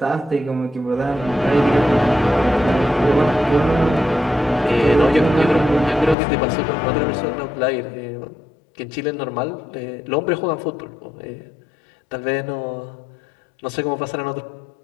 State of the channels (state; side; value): drops out; right; at 6.2 s